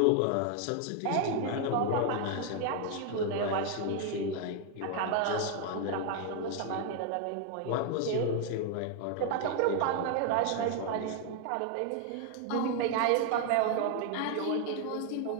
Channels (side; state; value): both; different; correlation 0.00